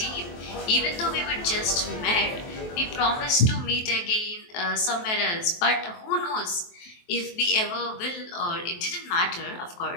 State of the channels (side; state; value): right; late; 23 ms